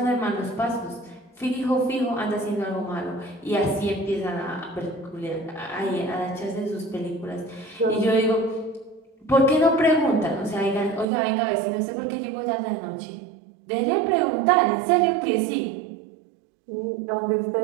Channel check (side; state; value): left; drops out; at 11.1 s